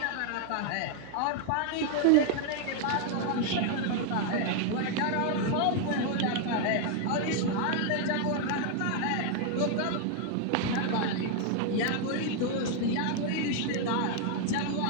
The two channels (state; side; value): different; both; correlation 0.00